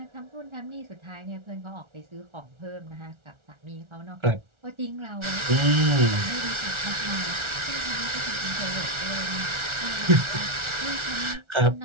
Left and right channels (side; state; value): left; late; 1.4 ms